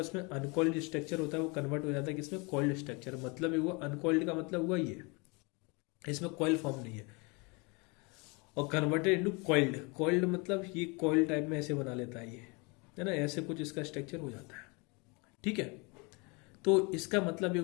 उसमें अनकॉइल्ड स्ट्रक्चर होता है, वो कन्वर्ट हो जाता है किसमें? Coiled structure. मतलब ये हुआ अनकॉइल्ड का मतलब हुआ ये, इसमें कॉइल फॉर्म नहीं है, और कन्वर्टेड इनटू कॉइल्ड। कॉइल्ड मतलब ये कॉइल टाइप में ऐसे बना लेता है ये, है ना, ऐसे कुछ इसका स्ट्रक्चर हो जाता है। ठीक है, तो इसका मतलब ये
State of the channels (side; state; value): right; quieter; 29.4 dB